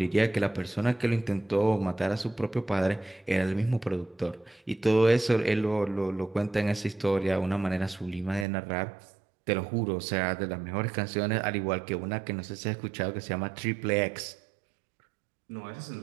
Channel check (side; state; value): left; drops out; at 8.5 s